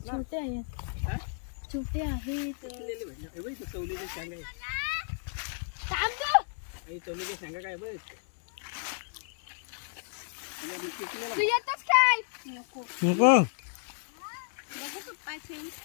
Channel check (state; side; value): silent; right; digital silence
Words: ना छोटे आहेत हा? छोटे आहेत पिकलेली म्हणजे. हे बघ इथं चवलीची शेंग आहे थांब गं. हे चवलीची शेंगा काय बघ तू येतोस काय नको नको बघू पप्पा शेंग